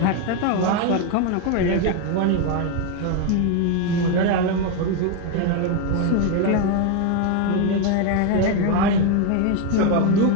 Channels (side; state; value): both; different; correlation 0.02